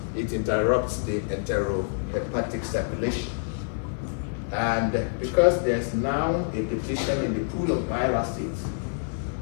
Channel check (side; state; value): right; silent; 60 dB below the other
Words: it interrupts the enterohepatic circulation. And because there's now a depletion in the pool of bile acids,